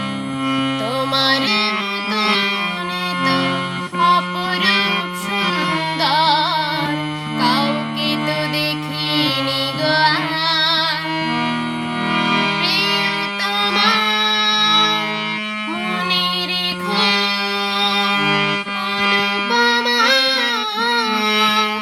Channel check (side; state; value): both; identical; correlation 1.00